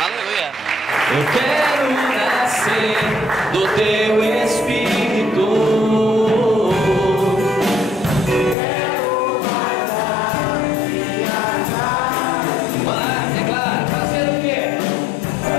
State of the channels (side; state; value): right; drops out; at 8.6 s